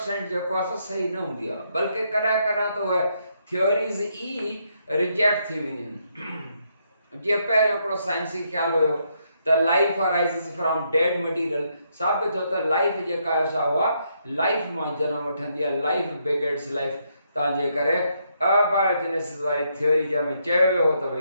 जेको आहे सही न हूंदी आहे, बल्कि कॾहिं त उहे थ्योरीज़ ई रिजेक्ट थी वेंदियूं आहिनि। जीअं पहिरियों हिकिड़ो साइंसी ख़्यालु हुयो त लाइफ अराइज़िस फ्रॉम डेड मटीरियल। साबित थियो त लाइफ जेका आहे सा उहा लाइफ मां जनम वठंदी आहे, लाइफ बिगिन्स लाइफ। तव्हांजे करे अबायोजेनेसिस वारी थ्योरी जंहिंमें चयो वियो हो त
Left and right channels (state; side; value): inverted; both; correlation -0.76